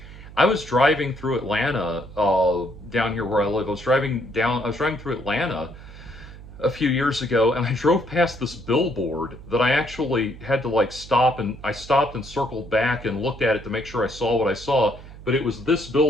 was driving through Atlanta, down here where I live. I was driving through Atlanta a few years ago, and I drove past this billboard that I actually had to like stop, and I stopped and circled back and looked at it to make sure I saw what I saw. But it was this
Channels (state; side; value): noise; right; hum, 16 dB below the sound